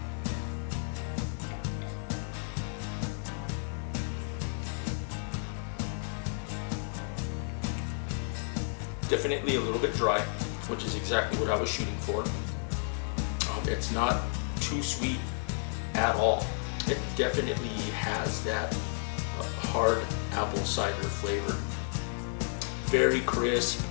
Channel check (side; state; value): right; silent; 56 dB below the other